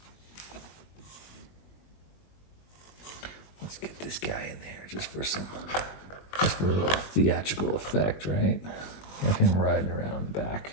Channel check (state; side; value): late; right; 21 ms